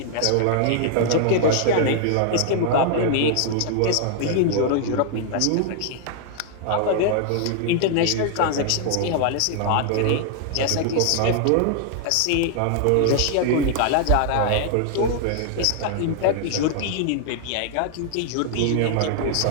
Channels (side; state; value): both; different; correlation 0.00